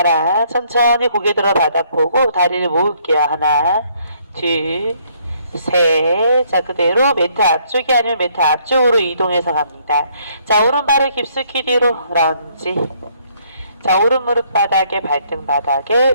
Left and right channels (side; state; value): both; inverted; correlation -0.67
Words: 천천히 고개 들어 바닥 보고 다리를 모을게요. 하나, 둘, 셋. 자, 그대로 매트 앞쪽이 아니면 매트 앞쪽으로 이동해서 갑니다. 자, 오른발을 깊숙이 뒤로 런지. 자, 오른 무릎 바닥에, 발등 바닥에,